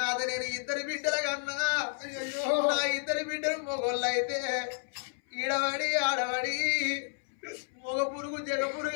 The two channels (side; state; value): right; silent; 57 dB below the other